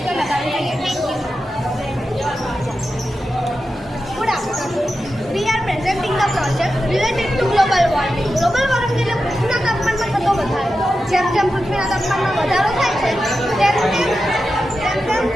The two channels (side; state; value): both; normal; correlation 0.91